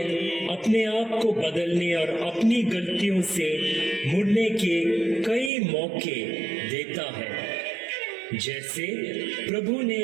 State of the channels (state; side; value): drops out; left; at 5.5 s